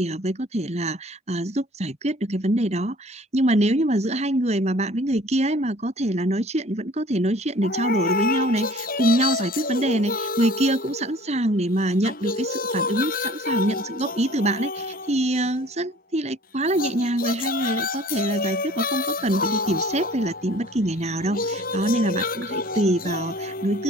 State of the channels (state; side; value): normal; both; correlation 0.51